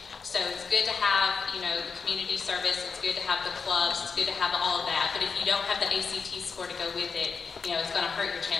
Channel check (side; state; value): right; quieter; 5.2 dB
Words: So it's good to have, the community service, it's good to have the clubs, it's good to have all of that, but if you don't have the ACT score to go with it, it's going to hurt your